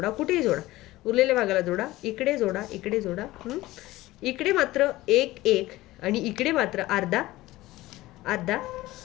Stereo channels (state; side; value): quieter; right; 17.7 dB